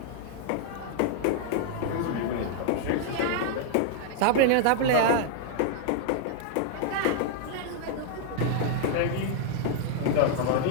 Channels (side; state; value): both; different; correlation 0.00